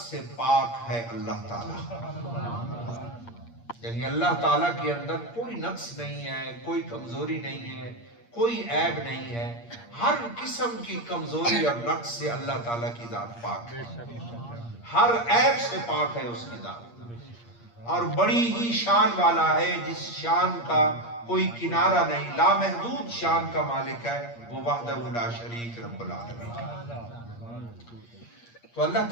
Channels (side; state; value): right; late; 8.6 ms